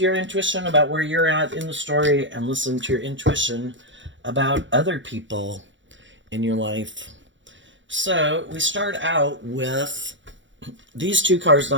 your intuition about where you're at in the story and listen to your intuition about other people in your life. So we start out with these two cards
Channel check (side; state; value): left; late; 0.55 ms